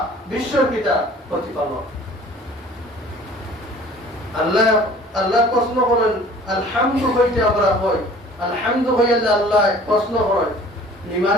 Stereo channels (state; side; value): normal; both; correlation 0.49